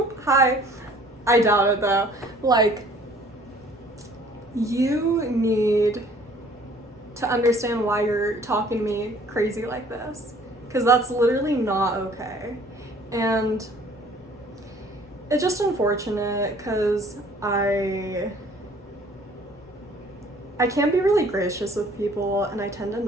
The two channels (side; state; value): both; normal; correlation 0.55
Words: hi. I doubt it though. Like, you need to understand why you're talking to me crazy like this, because that's literally not okay. And it's just unfortunate because I can't be really gracious with people, and I tend to